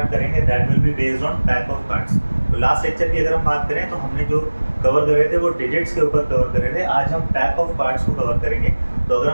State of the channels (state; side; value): inverted; both; correlation -1.00